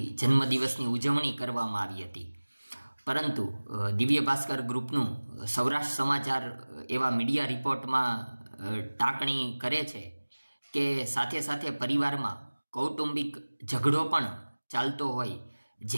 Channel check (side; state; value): both; inverted; correlation -1.00